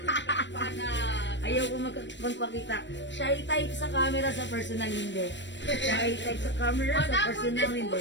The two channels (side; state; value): right; late; 0.53 ms